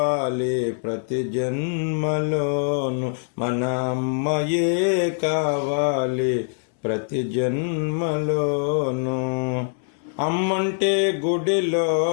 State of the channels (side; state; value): right; silent; 63 dB below the other